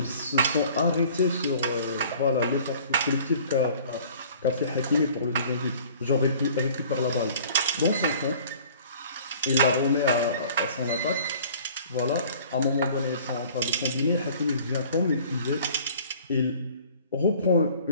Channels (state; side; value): inverted; both; correlation -0.50